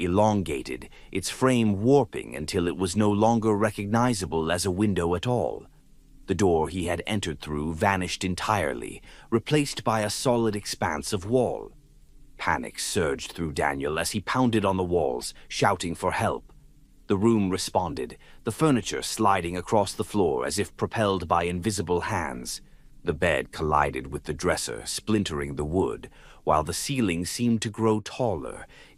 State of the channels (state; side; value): identical; both; correlation 1.00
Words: its frame warping until it was no longer recognizable as a window at all. The door he had entered through vanished entirely, replaced by a solid expanse of wall. Panic surged through Daniel as he pounded on the walls, shouting for help. The room responded, the furniture sliding across the floor as if propelled by invisible hands. The bed collided with the dresser, splintering the wood, while the ceiling seemed to grow taller,